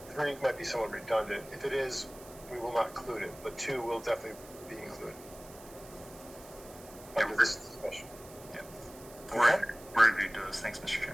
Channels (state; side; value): noise; right; hiss, 19 dB below the sound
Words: 3 might be somewhat redundant. If it is, we will not include it, but 2 will definitely be included. Under this discussion. Yeah. Okay. We're agreed to those. Thanks, Mr.